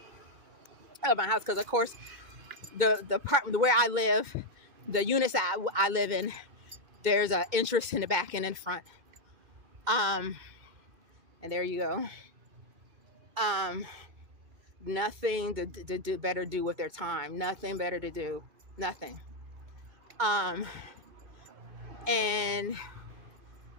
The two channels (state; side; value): late; left; 2.2 ms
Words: of my house. Because of course, the part where I live, the units that I live in, there's an entrance in the back and in front. And there you go. Nothing to do better do with their time. Nothing better to do. Nothing. Since